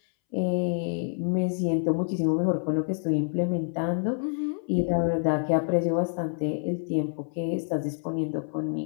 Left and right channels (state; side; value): silent; right; 60 dB below the other